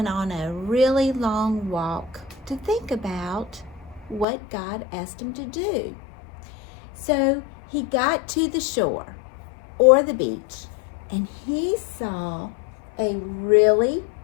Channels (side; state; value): right; drops out; at 4.2 s